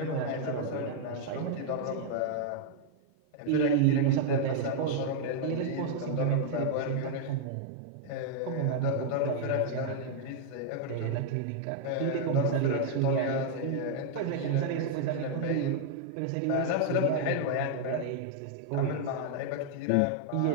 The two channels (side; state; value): both; different; correlation -0.01